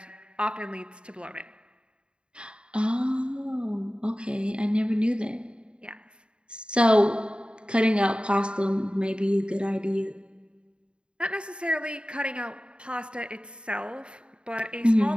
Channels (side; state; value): left; late; 0.053 ms